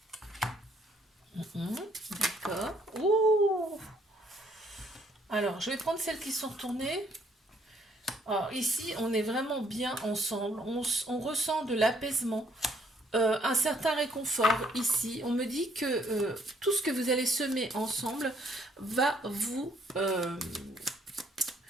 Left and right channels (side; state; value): both; normal; correlation 0.66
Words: D'accord. Ouh. Alors, je vais prendre celles qui sont retournées. Alors, ici, on est vraiment bien ensemble. On ressent de l'apaisement, un certain réconfort ici. On me dit que tout ce que vous allez semer ensemble va vous...